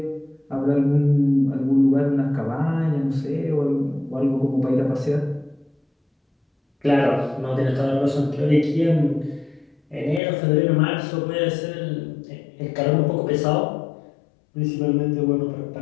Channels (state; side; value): drops out; right; at 10.2 s